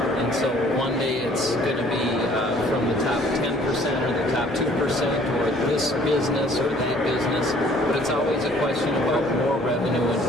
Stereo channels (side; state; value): both; normal; correlation 0.57